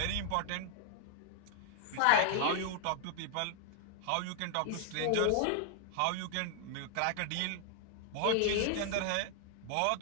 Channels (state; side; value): different; both; correlation 0.00